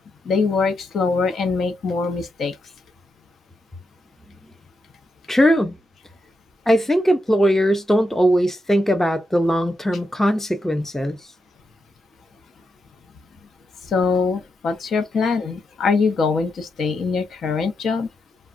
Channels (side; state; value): both; normal; correlation 0.85